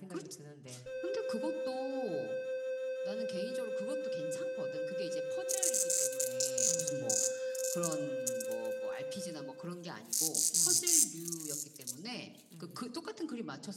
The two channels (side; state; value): both; identical; correlation 1.00